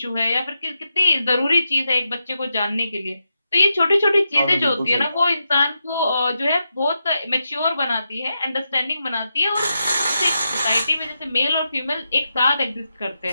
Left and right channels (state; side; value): inverted; both; correlation -0.86